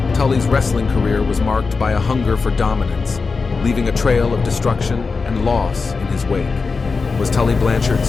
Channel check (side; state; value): right; quieter; 4.5 dB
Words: Tully's wrestling career was marked by a hunger for dominance, leaving a trail of destruction and loss in his wake. Was Tully Blanchard